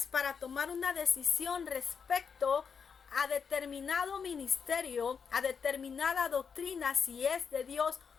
para tomar una decisión respecto a determinado ministerio, a determinada doctrina, si es de Dios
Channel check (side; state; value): right; quieter; 6.3 dB